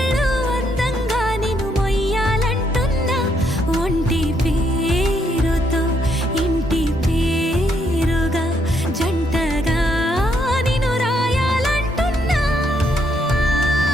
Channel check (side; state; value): both; normal; correlation 0.74